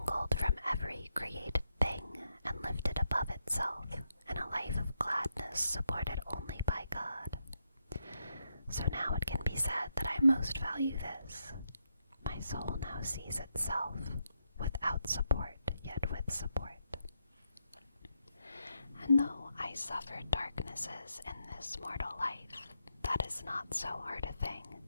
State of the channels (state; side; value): inverted; both; correlation -0.82